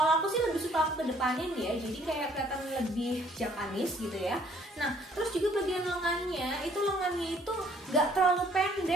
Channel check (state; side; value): normal; both; correlation 0.61